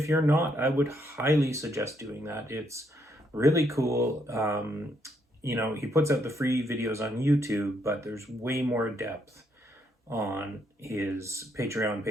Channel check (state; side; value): normal; both; correlation 0.74